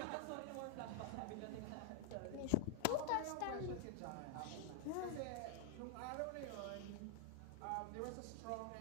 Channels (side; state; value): both; different; correlation 0.00